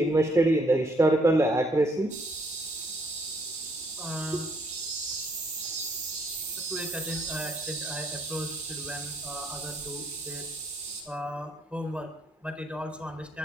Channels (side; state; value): both; normal; correlation 0.69